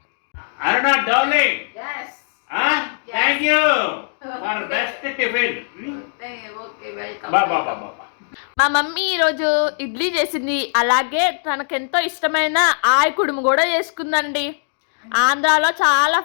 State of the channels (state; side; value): silent; right; digital silence